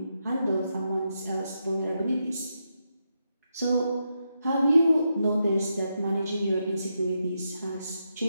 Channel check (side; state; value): both; inverted; correlation -0.84